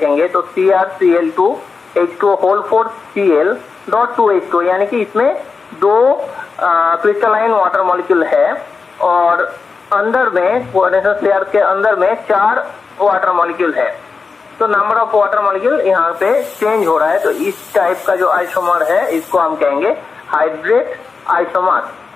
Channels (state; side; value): quieter; right; 4.7 dB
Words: तो CrCl2H2O4Cl.2H2, यानी कि इसमें 2 क्रिस्टलाइन वाटर मॉलिक्यूल है और अंदर में कोऑर्डिनेशन स्फीयर के अंदर में 4 वाटर मॉलिक्यूल है। तो नंबर ऑफ वाटर मॉलिक्यूल यहाँ पे चेंज हो रहा है। तो इस टाइप का जो आइसोमर है इसको हम कहेंगे हाइड्रेट आइसोमर।